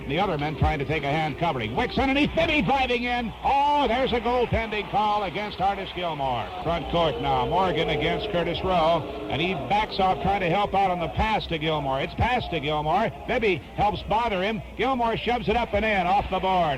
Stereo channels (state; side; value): identical; both; correlation 1.00